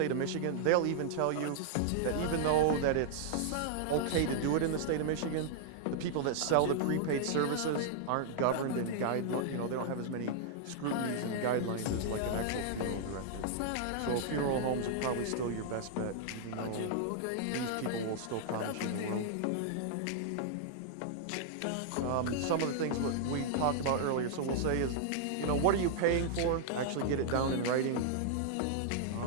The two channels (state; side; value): different; both; correlation -0.01